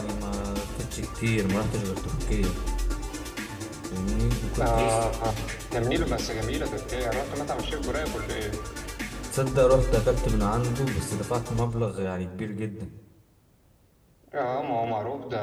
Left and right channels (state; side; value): identical; both; correlation 1.00